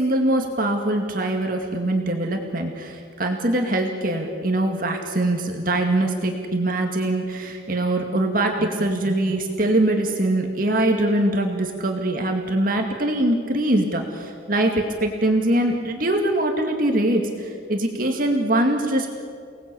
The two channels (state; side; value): normal; both; correlation 0.55